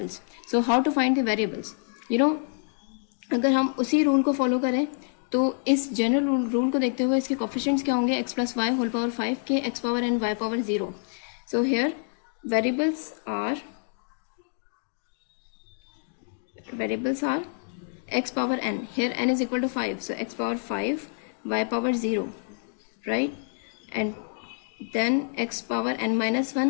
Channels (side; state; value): right; silent; digital silence